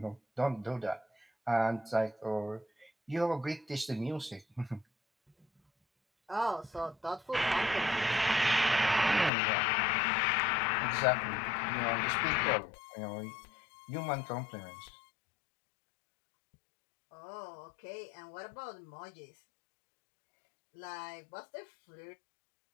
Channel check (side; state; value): right; drops out; at 9.3 s